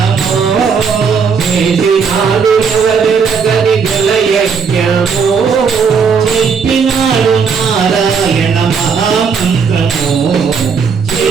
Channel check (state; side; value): quieter; left; 5.9 dB